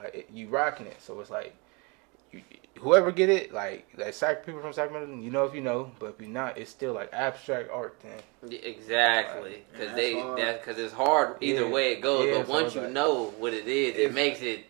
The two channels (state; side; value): quieter; left; 30.3 dB